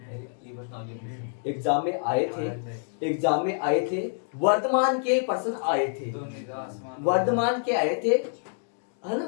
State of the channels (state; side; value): silent; right; digital silence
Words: एग्जाम में आए थे वर्तमान के प्रश्न आए थे, वर्तमान के आए थे, है